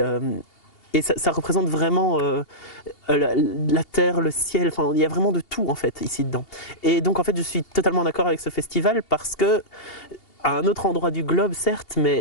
ça représente vraiment la terre, le ciel, enfin il y a vraiment de tout en fait ici dedans. Et donc en fait je suis totalement d'accord avec ce festival parce que à un autre endroit du globe, certes,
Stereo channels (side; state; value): right; late; 2.8 ms